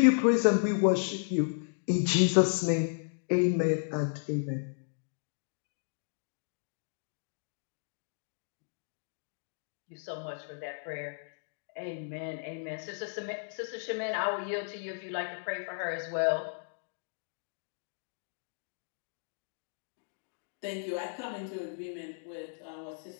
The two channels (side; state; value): right; silent; digital silence